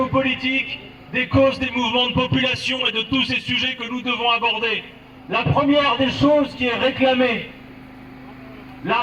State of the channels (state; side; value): identical; both; correlation 1.00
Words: des causes des mouvements de population et de tous ces sujets que nous devons aborder. La première des choses qui est réclamée, la